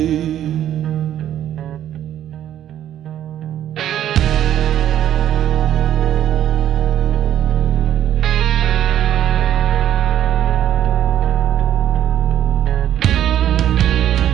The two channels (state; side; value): quieter; left; 11.2 dB